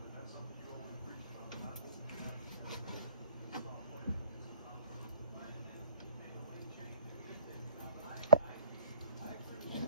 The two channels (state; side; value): inverted; both; correlation -0.50